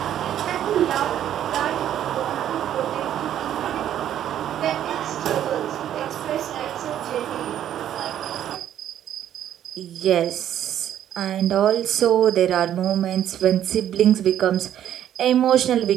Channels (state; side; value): quieter; left; 10.8 dB